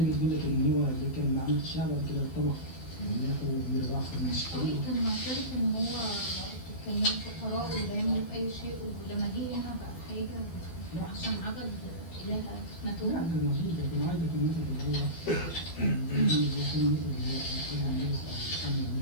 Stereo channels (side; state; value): right; late; 12 ms